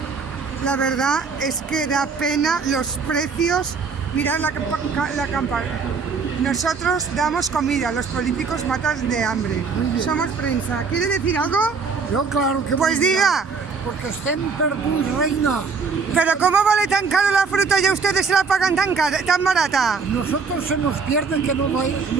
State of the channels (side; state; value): left; quieter; 5.1 dB